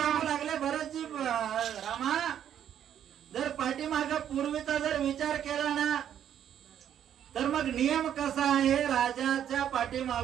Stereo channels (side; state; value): left; quieter; 9.8 dB